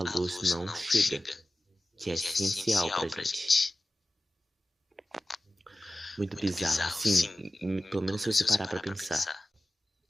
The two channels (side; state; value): both; normal; correlation 0.95